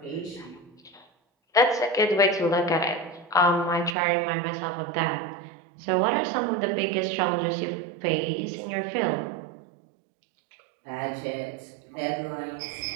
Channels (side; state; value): left; drops out; at 4.0 s